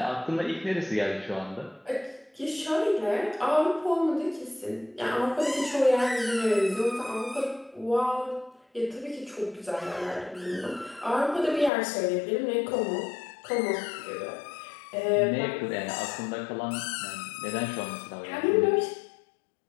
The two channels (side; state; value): right; drops out; at 11.7 s